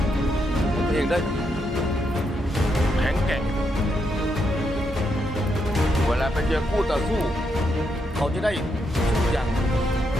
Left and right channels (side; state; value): both; normal; correlation 0.80